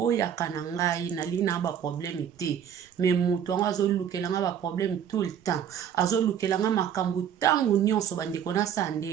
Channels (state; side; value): quieter; left; 8.8 dB